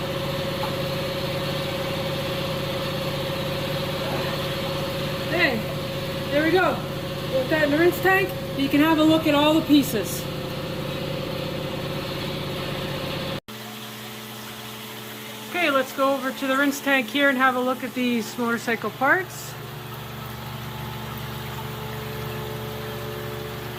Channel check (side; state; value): both; identical; correlation 1.00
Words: Okay, there we go. Put that in the rinse tank. You can have a look at all the pieces. Okay, let's go over to the rinse tank here and have a look at these motorcycle parts.